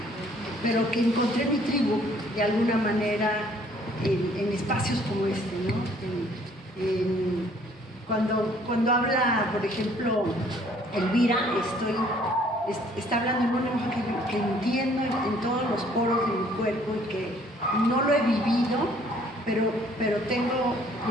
pero que encontré mi tribu de alguna manera en espacios como este, ¿no? Cuando habla, por ejemplo, Elvira, está hablando en un lenguaje que entiendo en todos los poros de mi cuerpo y que no lo he vivido, pero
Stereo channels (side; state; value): both; normal; correlation 0.60